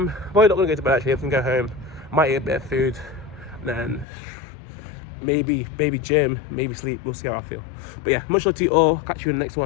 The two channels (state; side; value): drops out; right; at 4.0 s